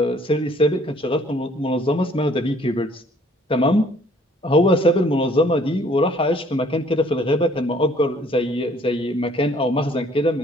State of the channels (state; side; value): normal; both; correlation 0.59